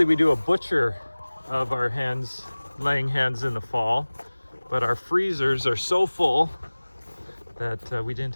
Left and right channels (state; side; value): inverted; both; correlation -1.00